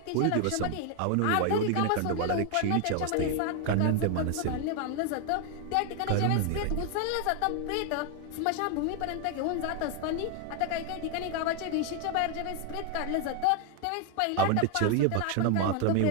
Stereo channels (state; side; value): different; both; correlation 0.01